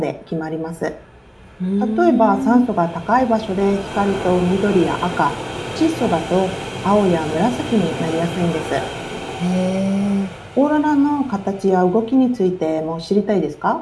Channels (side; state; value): both; identical; correlation 1.00